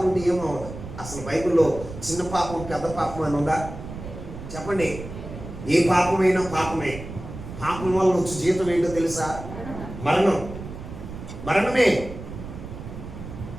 ఉంటే ఏమవ్వదు. అసలు బైబిల్లో చిన్న పాపం పెద్ద పాపం అని ఉందా? చెప్పండి. ఏ పాపమైనా పాపమే. పాపం వల్ల వచ్చే జీతం ఏంటో తెలుసా? మరణమే.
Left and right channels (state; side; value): noise; right; rumble, 11 dB below the sound